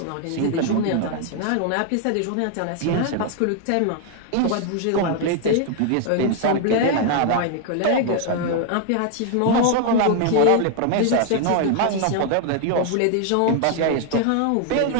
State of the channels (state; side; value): different; both; correlation 0.00